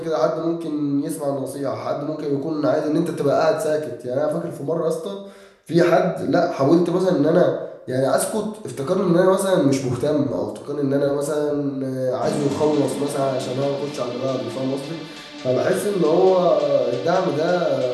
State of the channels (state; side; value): identical; both; correlation 1.00